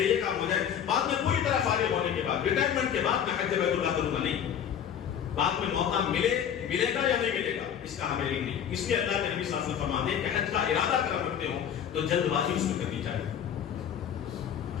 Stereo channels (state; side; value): quieter; right; 8.9 dB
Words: یہ کام ہو جائے، بعد میں پوری طرح فارغ ہونے کے بعد، ریٹائرمنٹ کے بعد میں حج بیت اللہ کروں گا، نہیں، بعد میں موقع ملے گا یا نہیں ملے گا اس کا ہمیں علم نہیں۔ اس لیے اللہ کے نبی صلی اللہ علیہ وسلم فرماتے ہیں کہ حج کا ارادہ کر رکھتے ہو تو جلد بازی اس میں کرنی چاہیے۔